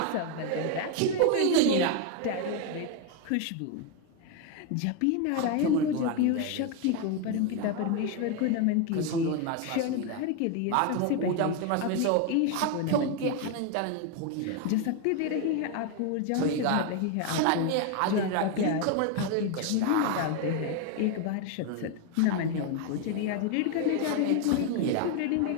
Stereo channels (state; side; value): different; both; correlation 0.01